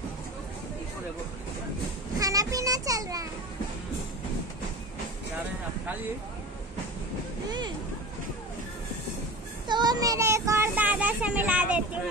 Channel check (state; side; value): normal; both; correlation 0.32